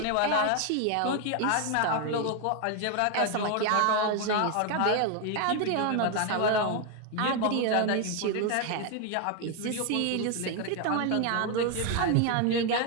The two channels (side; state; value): both; different; correlation 0.01